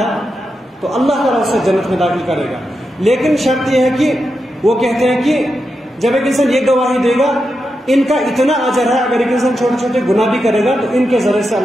تو اللہ تعالیٰ اسے جنت میں داخل کرے گا۔ لیکن شرط یہ ہے کہ وہ کہتے ہیں کہ جب ایک انسان یہ گواہی دے گا ان کا اتنا اجر ہے، اگر ایک انسان چھوٹے چھوٹے گناہ بھی کرے گا تو ان کے ذریعے سے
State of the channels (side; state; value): both; normal; correlation 0.87